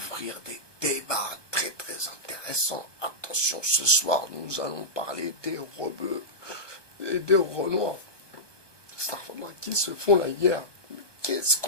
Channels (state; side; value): late; right; 1.2 ms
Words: des débats très très intéressants. Attention, ce soir, nous allons parler des rebeux et des renois. Starfall qui se font la guerre. Qu'est-ce